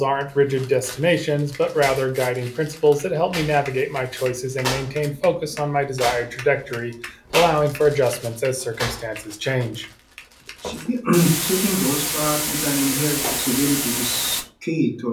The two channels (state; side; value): identical; both; correlation 1.00